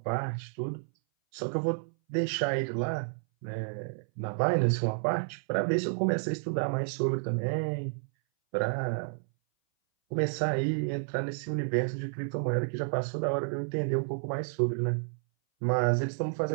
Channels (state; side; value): silent; left; 57 dB below the other